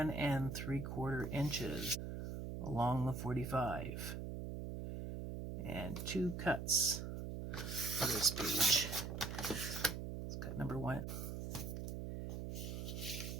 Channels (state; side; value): noise; right; hum, 5 dB below the sound